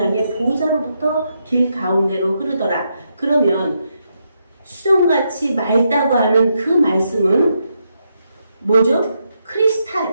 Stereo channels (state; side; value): inverted; both; correlation -0.81